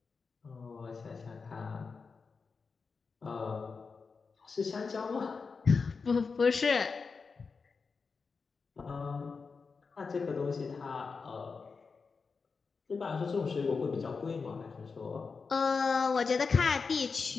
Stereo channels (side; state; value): right; quieter; 4.9 dB